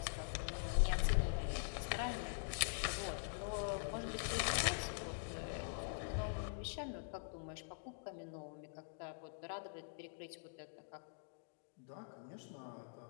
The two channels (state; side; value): silent; right; digital silence